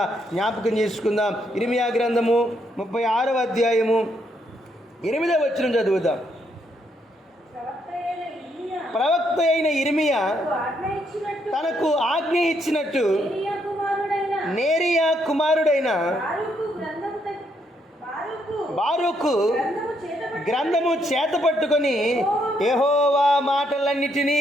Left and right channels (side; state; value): both; normal; correlation 0.75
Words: జ్ఞాపకం చేసుకుందాం. ఇర్మియా గ్రంథము 36వ అధ్యాయము 8వ వచనం చదువుదాం. ప్రవక్త అయిన ఇర్మియా తనకు ఆజ్ఞ ఇచ్చినట్టు నేరియా కుమారుడైన బారూకు గ్రంథము చేత పట్టుకొని యెహోవా